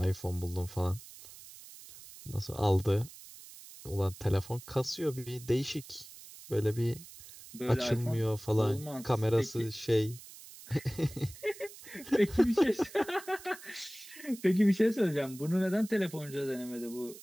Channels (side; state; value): right; noise; hiss, 17 dB below the sound